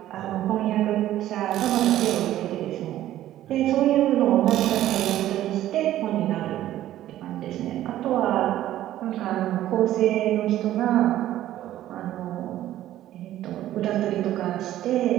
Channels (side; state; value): left; quieter; 13.4 dB